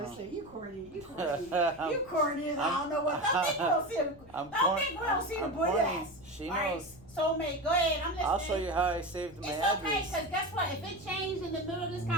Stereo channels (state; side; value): noise; left; rumble, 23 dB below the sound